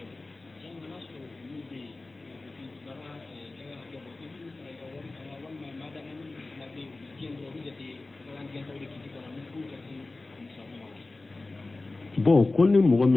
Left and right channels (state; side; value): quieter; right; 3.2 dB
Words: bon ko ni mɔgɔ